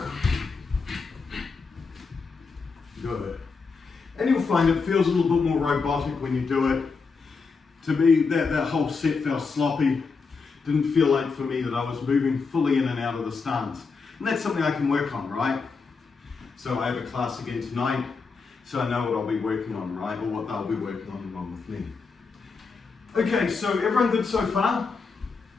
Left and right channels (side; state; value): right; quieter; 4.8 dB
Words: Good. And you'll find it feels a little bit more robotic when you do it. To me, that whole set felt sloppy. Didn't feel like for me that I was moving fully in and out of the stance. And that's something I can work on, right? So I have a class again tonight, so I know what I'll be working on, right? Or what they'll be working on along with me. Okay, so everyone good so far?